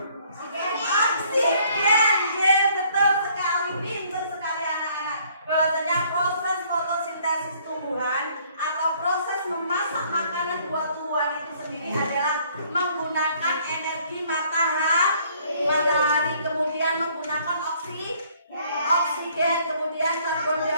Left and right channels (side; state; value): both; inverted; correlation -0.62